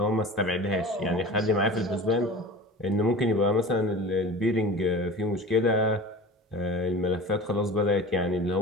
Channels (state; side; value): normal; both; correlation 0.35